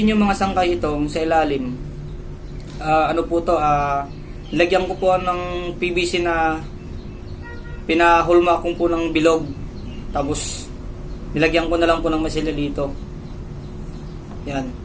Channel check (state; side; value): identical; both; correlation 1.00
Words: nyo mga sangkay itong sa ilalim, ano po to, lagyan ko po ng PVC na pinahulma ko po ng bilog. Tapos nilagyan ko na lang po ng masila dito. Yan.